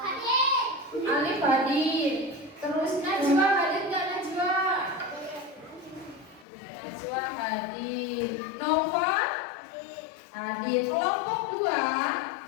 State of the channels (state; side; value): drops out; right; at 6.5 s